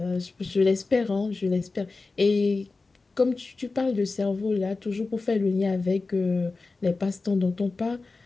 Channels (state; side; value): quieter; right; 3.8 dB